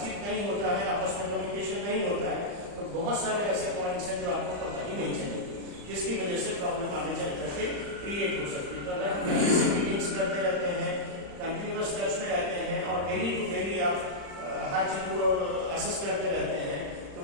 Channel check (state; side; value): late; left; 35 ms